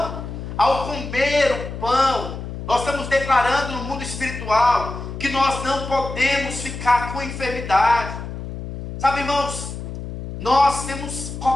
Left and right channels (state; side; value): noise; left; hum, 8 dB below the sound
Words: Ao comer o pão, nós estamos declarando no mundo espiritual que nós não podemos ficar com enfermidade. Sabe, irmãos, nós temos